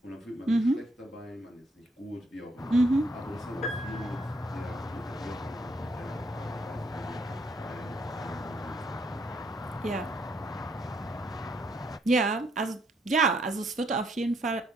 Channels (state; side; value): normal; both; correlation 0.71